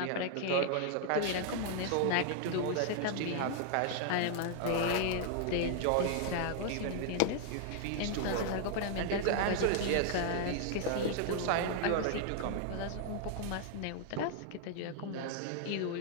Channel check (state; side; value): different; both; correlation 0.00